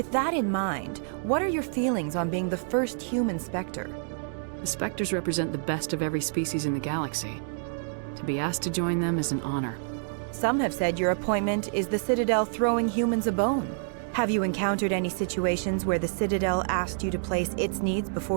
that in mind, what are your feelings on being the first human Spectre? The Spectres represent the best of every species in the galaxy. To be asked to join them is an honor. Some have said your appointment is the Citadel throwing humans a bone. Have you encountered any situations where the Citadel asked you to place its needs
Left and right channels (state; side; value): silent; left; digital silence